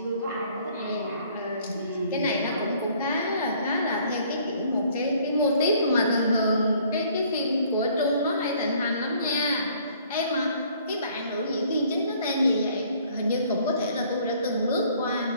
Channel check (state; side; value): inverted; both; correlation -0.59